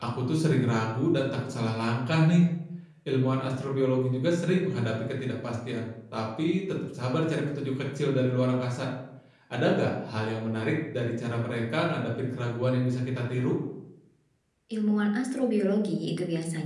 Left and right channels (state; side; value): identical; both; correlation 1.00